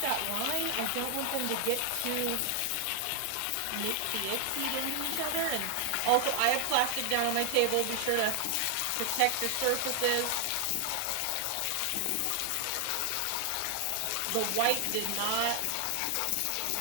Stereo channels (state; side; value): different; both; correlation 0.00